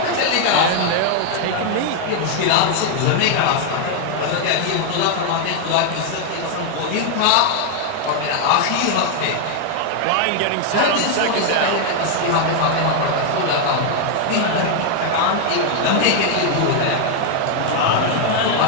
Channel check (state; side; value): different; both; correlation 0.00